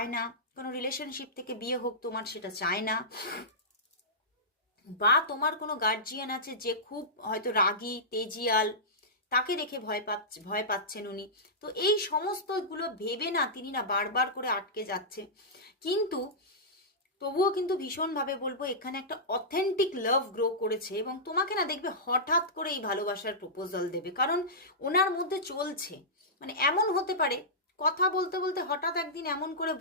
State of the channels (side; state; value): both; normal; correlation -0.15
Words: না কোনো রিলেশনশিপ থেকে বিয়ে হোক, তোমার সেটা চায় না, বা তোমার কোনো গার্জিয়ান আছে যে খুব হয়তো রাগী তেজিয়াল, তাকে দেখে ভয় পাচ্ছেন উনি। তো এই সমস্তগুলো ভেবে না তিনি না বারবার করে আটকে যাচ্ছে। কিন্তু তবুও কিন্তু ভীষণভাবে বলবো এখানে একটা অথেন্টিক লাভ গ্রো করেছে, এবং তোমাকে না দেখবে হঠাৎ করে এই ভালোবাসার প্রপোজাল দেবে, কারণ ওনার মধ্যে চলছে। মানে এমন হতে পারে কথা বলতে বলতে হঠাৎ একদিন এমন করে